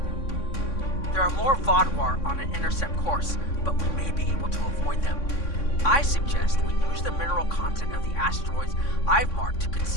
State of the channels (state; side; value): late; right; 3.6 ms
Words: There are more Vaudouar on an intercept course, but we may be able to avoid them. I suggest we use the mineral content of the asteroids I've marked to